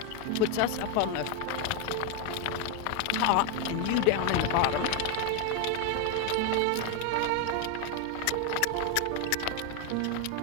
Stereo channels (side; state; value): both; different; correlation 0.01